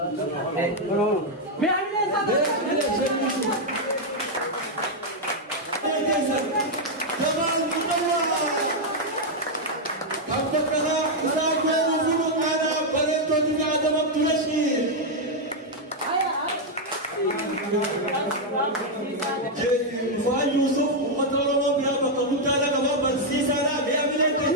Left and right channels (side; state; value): both; normal; correlation -0.01